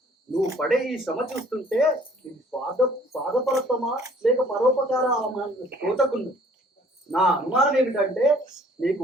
నువ్వు పడే ఈ శ్రమ చూస్తుంటే ఇది స్వార్థపరత్వమా లేక పరోపకార తోచకుంది. నా అనుమానం ఏమిటంటే నీకు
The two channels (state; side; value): normal; both; correlation 0.57